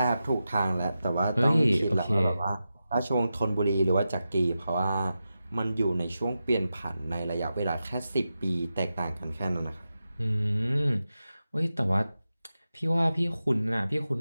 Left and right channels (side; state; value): both; inverted; correlation -0.91